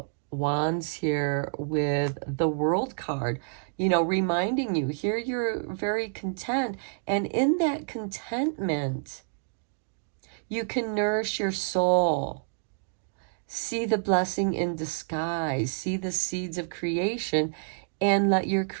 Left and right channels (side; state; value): left; silent; digital silence